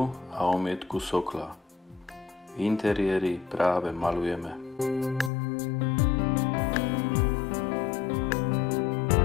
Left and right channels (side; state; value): right; drops out; at 5.3 s